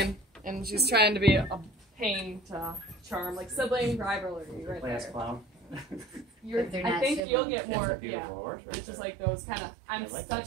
and she's trying to be a pain to charm, like sibling rivalry right Class there. clown. But they're I not think civil. you'll get more. Beautiful Yeah. horse, right It's just there. like those kind of. I'm I like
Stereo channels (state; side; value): drops out; left; at 7.2 s